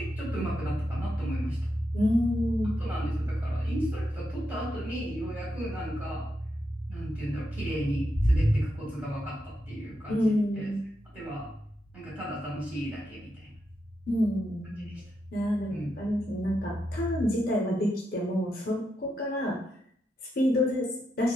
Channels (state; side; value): normal; both; correlation 0.84